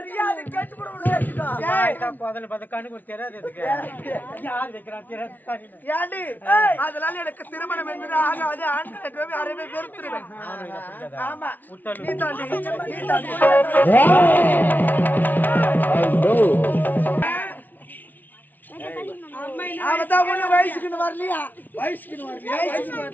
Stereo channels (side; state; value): right; late; 0.083 ms